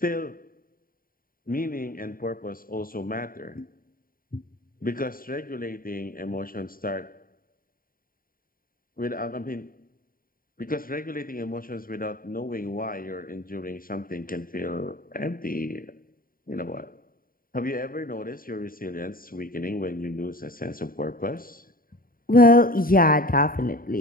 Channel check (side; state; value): right; late; 0.41 ms